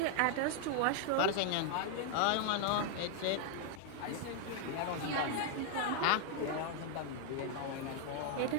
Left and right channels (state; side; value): different; both; correlation 0.00